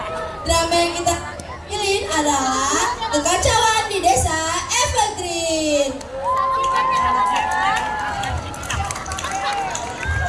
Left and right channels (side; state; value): both; identical; correlation 1.00